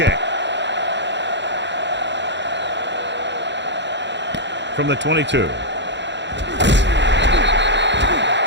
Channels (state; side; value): late; left; 0.52 ms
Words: From the 22.